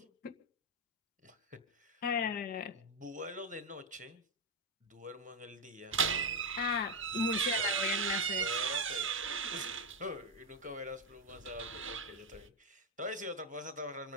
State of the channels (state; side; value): normal; both; correlation 0.05